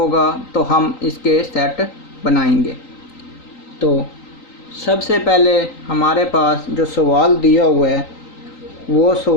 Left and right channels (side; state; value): right; late; 3.9 ms